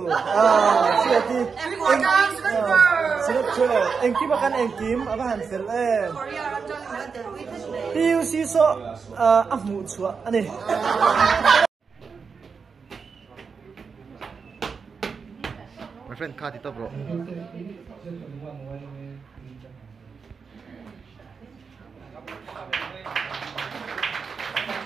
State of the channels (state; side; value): quieter; left; 5.5 dB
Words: siati engkim akan engkim apa hansel PUC so afmu chua ani my friend card itu bro